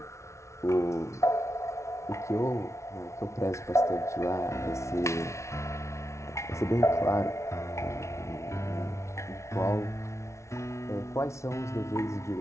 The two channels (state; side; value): late; right; 0.14 ms